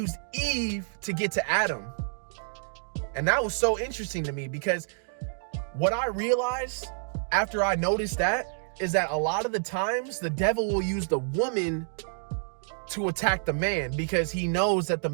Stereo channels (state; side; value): silent; left; digital silence